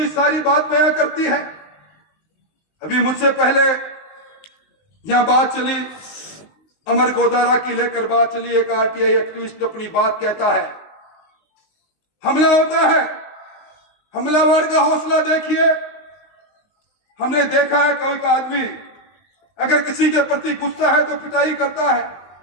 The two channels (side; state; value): right; late; 19 ms